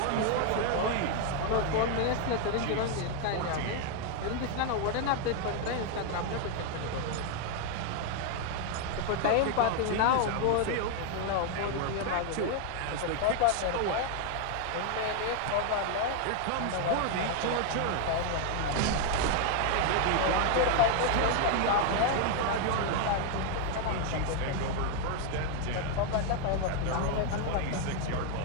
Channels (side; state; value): both; different; correlation 0.00